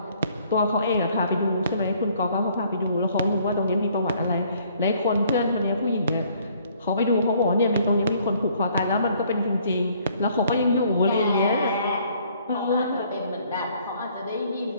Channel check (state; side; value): inverted; both; correlation -0.62